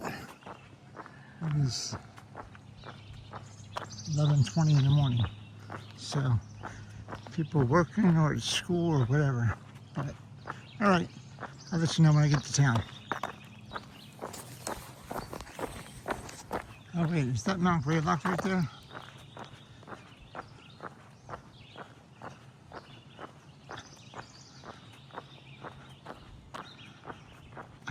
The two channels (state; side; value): identical; both; correlation 1.00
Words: It is 11:20 in the morning, so people are working or at school or whatever. But all right, I'll let you know when I get to town. Oh wait, is that Mount Greylock right there?